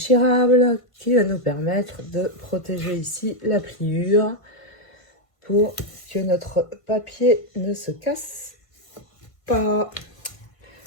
qui va nous permettre de protéger ici la pliure pour que notre papier ne se casse pas.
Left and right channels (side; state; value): right; late; 1.5 ms